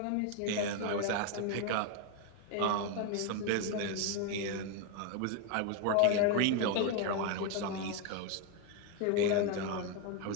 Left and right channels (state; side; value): different; both; correlation 0.01